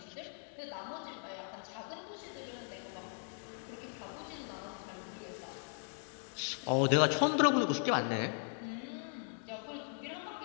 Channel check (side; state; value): right; silent; 52 dB below the other